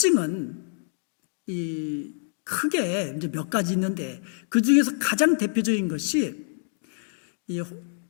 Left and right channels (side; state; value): right; silent; digital silence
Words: 크게 이제 몇 가지 있는데, 그 중에서 가장 대표적인 것이 이